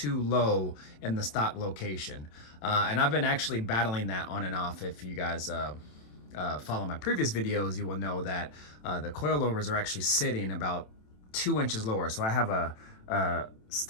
low in the stock location, and I've been actually battling that on and off. If you guys follow my previous videos, you will know that the coilovers are actually sitting about 2 inches lower. So I have a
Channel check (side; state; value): right; late; 27 ms